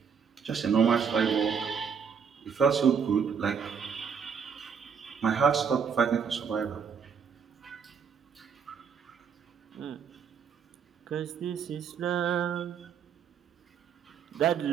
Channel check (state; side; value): quieter; left; 6.7 dB